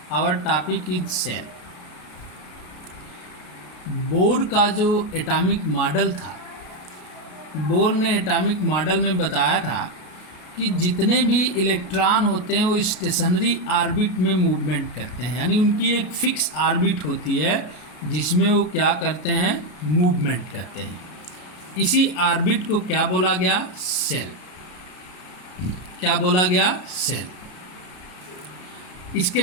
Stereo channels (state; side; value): late; right; 33 ms